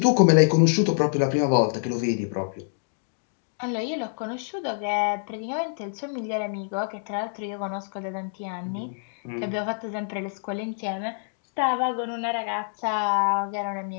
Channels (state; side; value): silent; right; digital silence